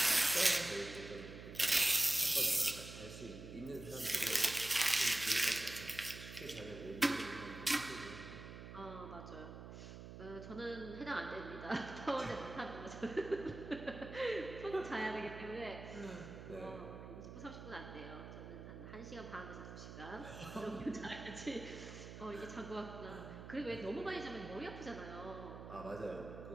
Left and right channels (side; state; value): right; noise; hum, 11 dB below the sound